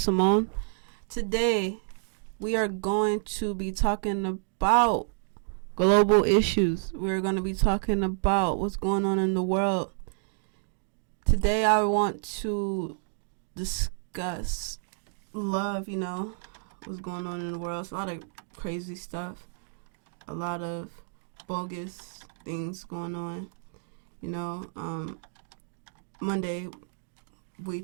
Today, we are going to be talking about global issues. We're going to be talking about what's going on in the world. Today, I want to discuss love, what's going on in the world. It's a lot of crazy stuff, a lot of bogus things going on, Monday, we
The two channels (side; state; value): left; silent; digital silence